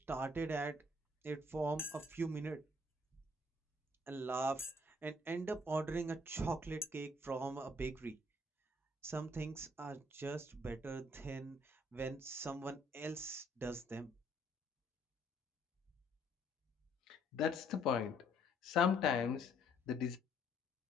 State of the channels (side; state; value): both; normal; correlation 0.65